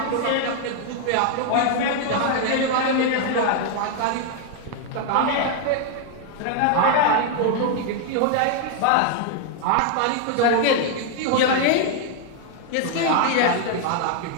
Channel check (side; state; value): both; different; correlation 0.00